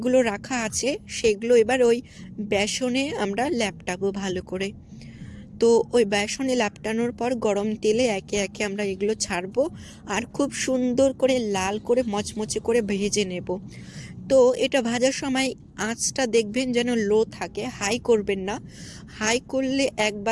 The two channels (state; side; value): identical; both; correlation 1.00